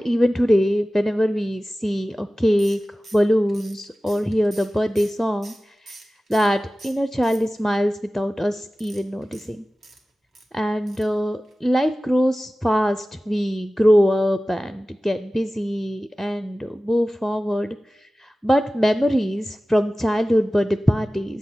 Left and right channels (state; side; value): normal; both; correlation 0.96